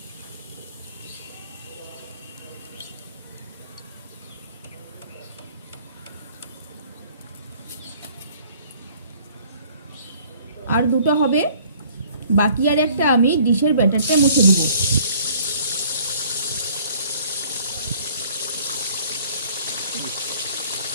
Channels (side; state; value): both; inverted; correlation -0.56